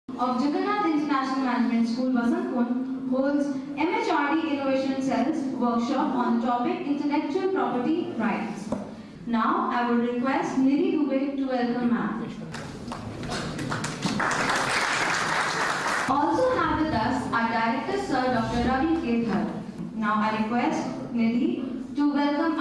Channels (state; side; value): identical; both; correlation 1.00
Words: of Jagannath International Management School, Vasantpur, holds MHRD Innovation Cells workshop on the topic Intellectual Property Rights. Now, I would request Nidhi Dubey to welcome ma'am. Also have with us our Director Sir Dr. Ravi K. Dhar. Now, I request Nidhi to welcome